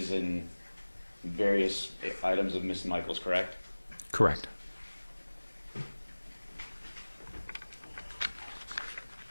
and various items of Miss Michaels, correct? Correct. I'm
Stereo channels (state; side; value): inverted; both; correlation -1.00